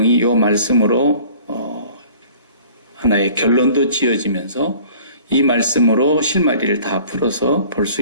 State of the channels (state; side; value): inverted; both; correlation -0.50